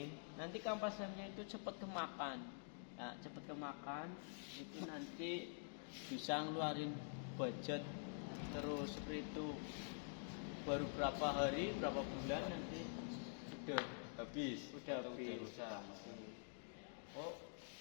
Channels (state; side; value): silent; right; digital silence